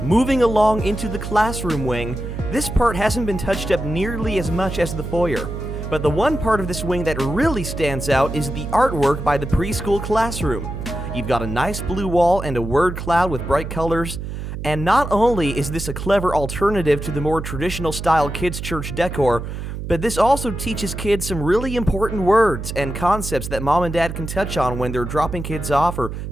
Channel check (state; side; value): noise; right; hum, 7 dB below the sound